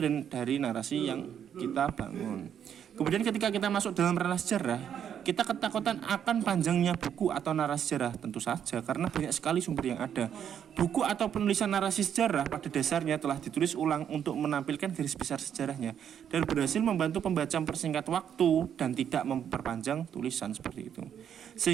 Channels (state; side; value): quieter; left; 8.9 dB